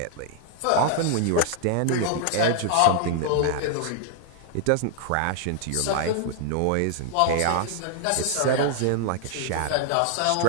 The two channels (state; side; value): different; both; correlation 0.00